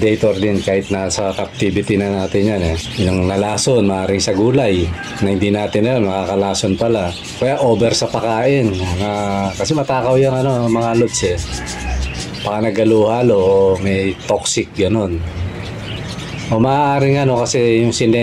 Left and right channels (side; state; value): both; identical; correlation 1.00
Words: din kahit nasa captivity na natin yan eh. Yung nalason, maaaring sa gulay na hindi natin alam, nakakalason pala. Kaya over sa pakain. Kasi matakaw yung mga Lods eh. Baka nagaluhalo o may toxic ganon. O maaaring kasi yung